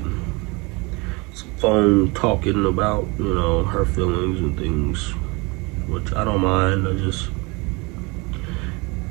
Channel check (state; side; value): quieter; left; 27.0 dB